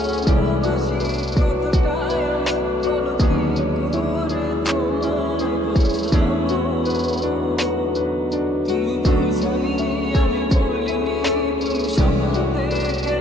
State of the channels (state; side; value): normal; both; correlation 0.69